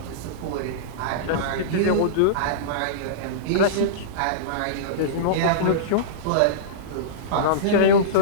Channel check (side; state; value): both; different; correlation -0.04